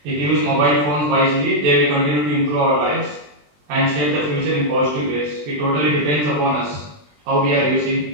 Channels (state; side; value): late; left; 20 ms